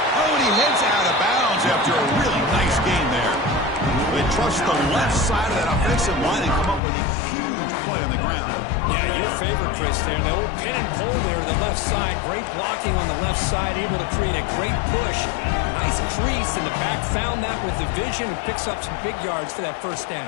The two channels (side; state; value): right; drops out; at 6.8 s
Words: Oh, and he heads out of bounds after a really nice gain there. They trust the left side of that offensive line and come up with a huge play on the ground. Yeah, your favorite, Chris, there. The old pin and pull there to the left side. Great blocking on the left side, able to create a great push. Nice crease in the back. Found that with the vision and picks up some big yards for that first